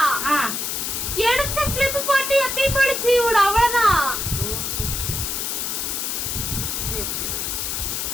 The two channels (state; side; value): noise; left; hiss, 2 dB below the sound